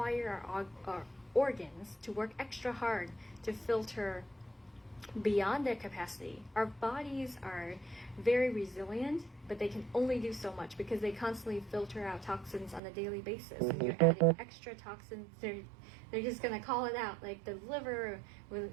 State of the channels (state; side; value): drops out; left; at 12.8 s